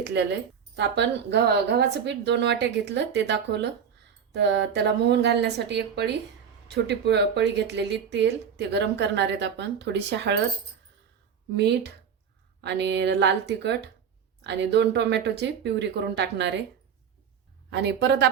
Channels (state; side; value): quieter; left; 7.4 dB